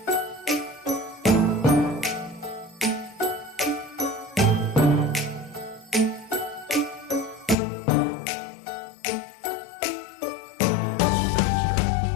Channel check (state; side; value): drops out; right; at 7.6 s